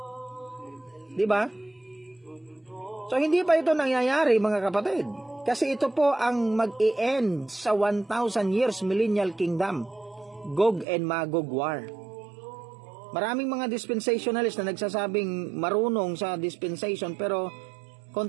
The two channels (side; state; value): left; drops out; at 10.9 s